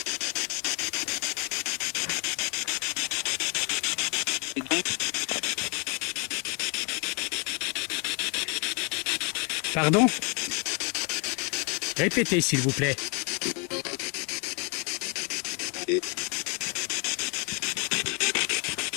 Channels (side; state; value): right; quieter; 35.0 dB